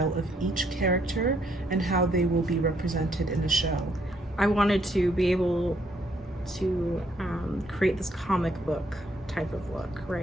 of each character and how they will be represented in the show? I wanted to be able to create this comic book type of look,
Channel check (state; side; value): normal; both; correlation 0.70